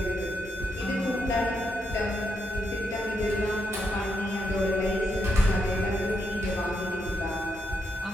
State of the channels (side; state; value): both; normal; correlation 0.81